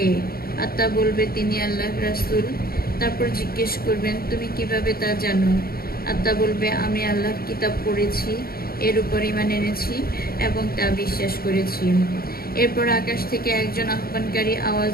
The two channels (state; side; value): late; right; 0.44 ms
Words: আত্মা বলবে, তিনি আল্লাহর রাসূল। তারপর জিজ্ঞেস করবেন, তুমি কিভাবে তা জানো? আত্মা বলবে, আমি আল্লাহর কিতাব পড়েছি, এর উপর ঈমান এনেছি এবং তা বিশ্বাস করেছি। এরপর আকাশ থেকে একজন আহ্বানকারী আওয়াজ